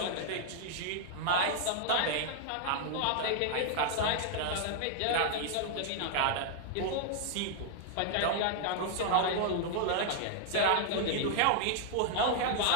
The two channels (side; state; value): both; different; correlation 0.00